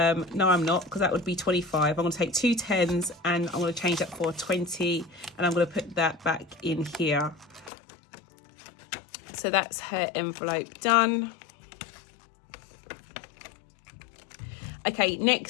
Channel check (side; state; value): right; drops out; at 7.7 s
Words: I'm not, because that would be 25. I'm going to take 2 10s and I'm going to change that for 20, and I'm going to put that back in here. So that's her envelope done. Okay,